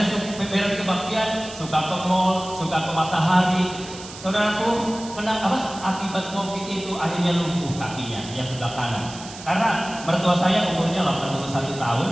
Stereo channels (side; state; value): right; noise; hiss, 14 dB below the sound